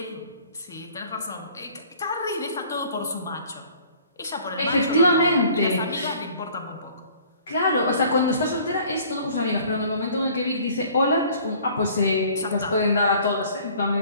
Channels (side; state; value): both; inverted; correlation -0.52